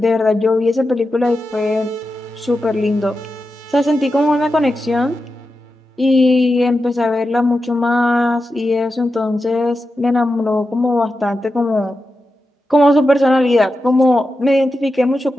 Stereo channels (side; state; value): both; normal; correlation 0.90